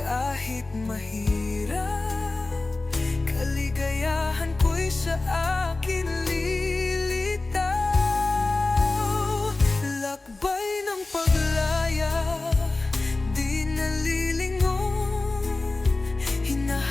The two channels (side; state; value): right; quieter; 3.2 dB